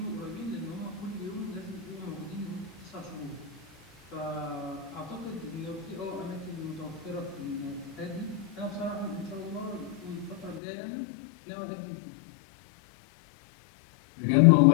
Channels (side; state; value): right; drops out; at 10.6 s